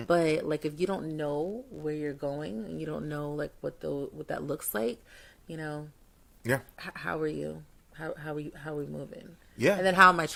But like, if you don't know where you're going and you don't know like what that looks like, Yeah. how are you? How are we moving? Yeah. And then how am I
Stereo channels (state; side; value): identical; both; correlation 1.00